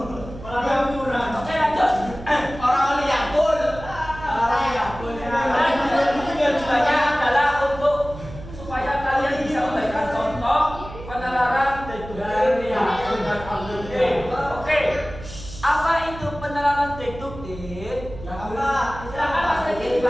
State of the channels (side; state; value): right; noise; hum, 14 dB below the sound